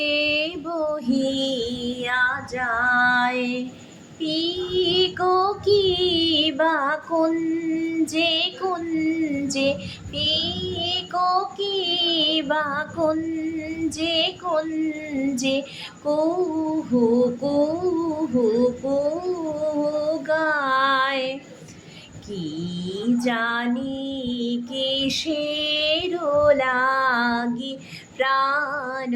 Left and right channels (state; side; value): identical; both; correlation 1.00